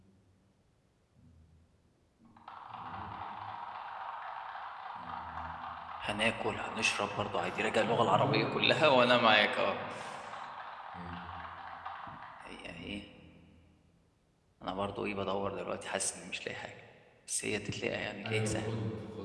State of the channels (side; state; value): both; identical; correlation 1.00